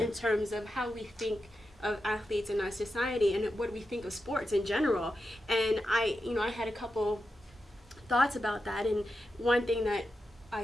terms of how we think of athletes in our society and what we think of sports in general. And I had a couple thoughts about that, and one thing that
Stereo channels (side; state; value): both; normal; correlation 0.89